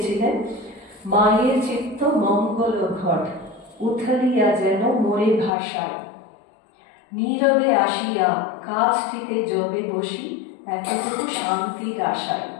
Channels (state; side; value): drops out; right; at 5.5 s